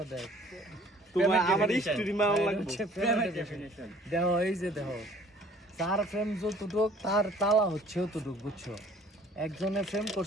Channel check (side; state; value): both; normal; correlation 0.54